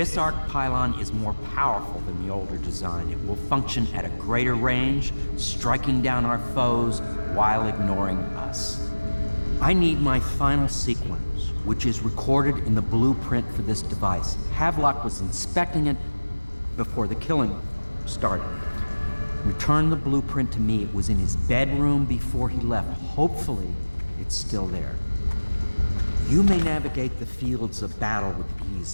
arc pylon is more powerful than the older design. It will function at a greater range, striking down our foes while ignoring us. I need my final sequence, which is recorded in the blueprint for this device. Havelock was inspecting it before the killing started. Return the blueprint to me. It was in his bedroom before he left. Hopefully, it's still there. You may navigate the fields of battle with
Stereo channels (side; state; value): both; inverted; correlation -1.00